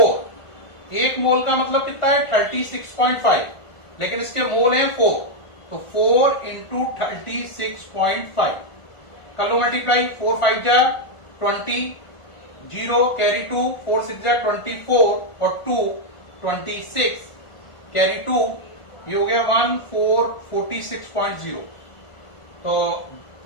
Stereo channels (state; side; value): late; right; 1.4 ms